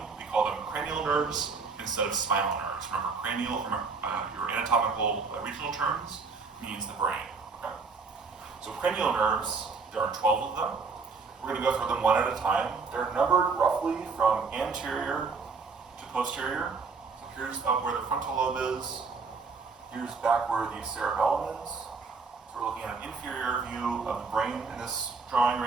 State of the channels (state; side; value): quieter; left; 4.7 dB